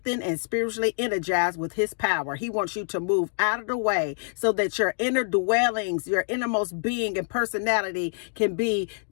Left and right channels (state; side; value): silent; right; digital silence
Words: and spiritually energized with his power. He wants you to move out of the way so that your inner dwellings, your innermost being and personality can be